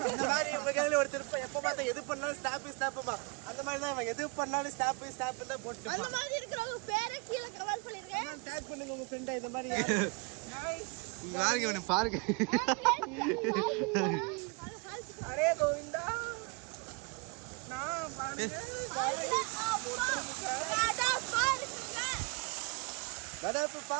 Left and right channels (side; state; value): left; quieter; 31.7 dB